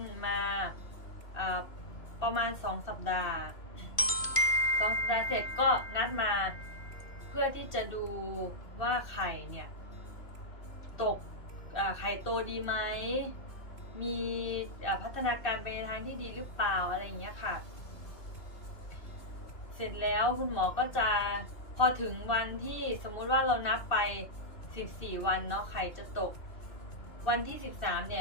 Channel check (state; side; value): late; right; 2.5 ms